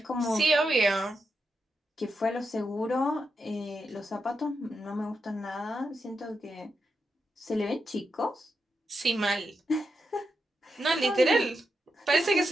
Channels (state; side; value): normal; both; correlation 0.86